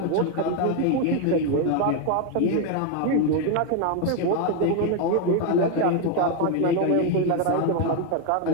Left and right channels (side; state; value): both; different; correlation 0.01